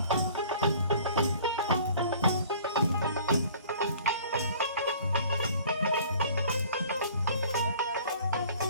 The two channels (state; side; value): inverted; both; correlation -0.50